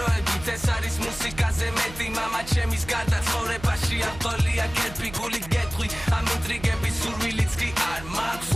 ეს არის მუსიკაზე მეტი მამა ჩემის გარდა ცხოვრებაში არ ყოლია კერპი გული გეტყვი ამ ინტრიგების სურვილიც კი არ მაქვს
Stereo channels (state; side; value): noise; right; hum, 15 dB below the sound